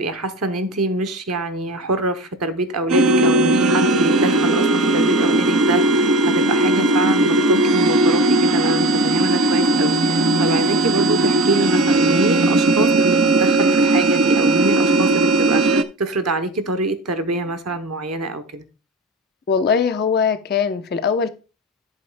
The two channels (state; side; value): normal; both; correlation 0.31